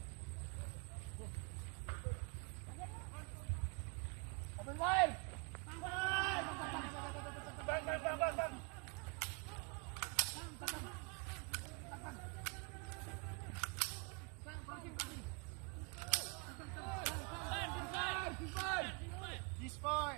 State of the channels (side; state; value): left; quieter; 33.2 dB